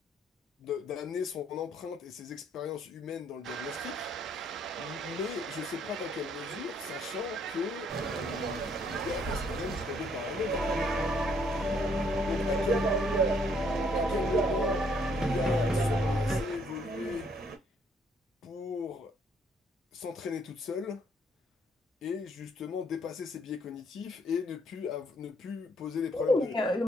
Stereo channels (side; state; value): both; normal; correlation 0.67